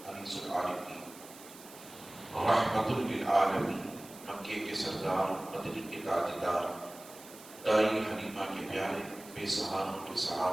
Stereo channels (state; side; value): noise; right; hiss, 18 dB below the sound